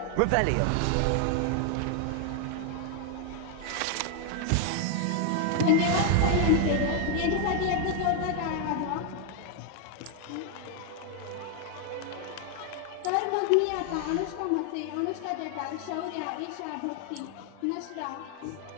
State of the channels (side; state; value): both; different; correlation 0.00